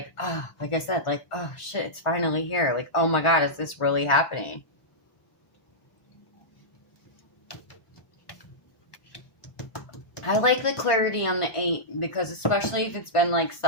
oh, like I said, like, oh shit, it's finally here. Like, oh my God, is this really happening? I like the clarity on the 8, because especially if it's been like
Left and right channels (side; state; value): right; late; 1.4 ms